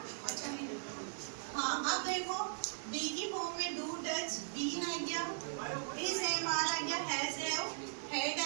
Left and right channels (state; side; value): silent; left; digital silence